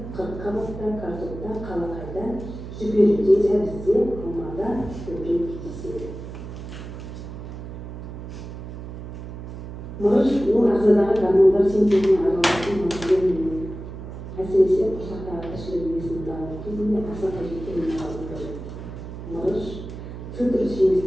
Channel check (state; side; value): noise; right; hum, 10 dB below the sound